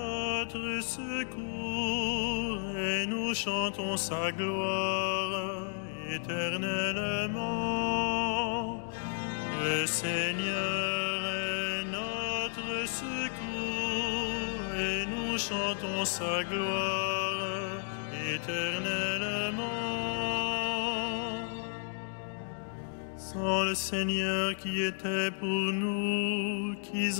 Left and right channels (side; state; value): right; silent; digital silence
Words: secours et nous chantons sa gloire éternellement. Le Seigneur est notre secours et nous chantons sa gloire éternellement. Sans le Seigneur qui était pour nous,